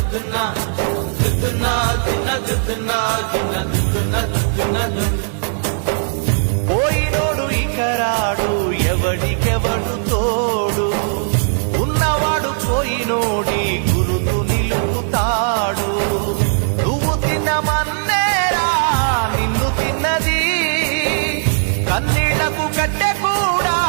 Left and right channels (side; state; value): left; silent; 67 dB below the other